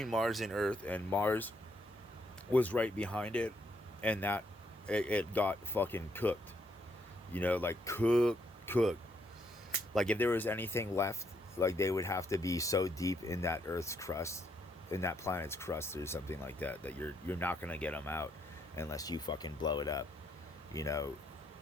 Mars and Earth. And Mars was right behind it. And that it got fucking cooked. Like cooked. Like, if there was anything left, like, they would have to be so deep in that Earth's crust, in that planet's crust or something like that, that you're not gonna get them out unless you fucking blow it up,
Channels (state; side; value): normal; both; correlation 0.73